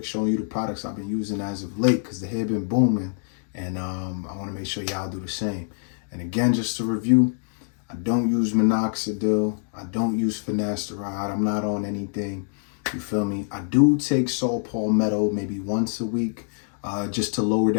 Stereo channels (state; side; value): silent; right; 58 dB below the other